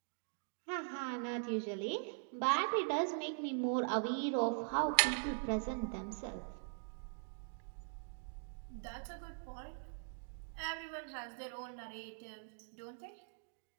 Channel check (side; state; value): left; silent; digital silence